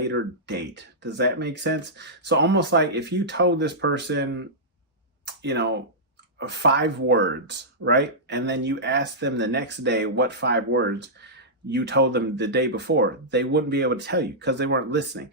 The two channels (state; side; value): normal; both; correlation -0.13